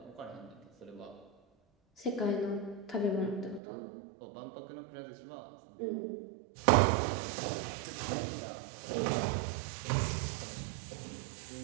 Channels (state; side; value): drops out; left; at 3.6 s